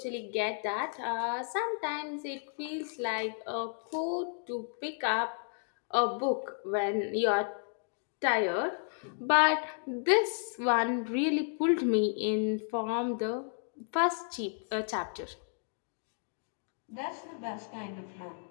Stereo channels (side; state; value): right; silent; 56 dB below the other